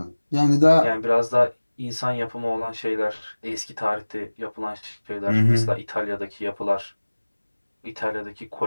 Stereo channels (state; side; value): inverted; both; correlation -1.00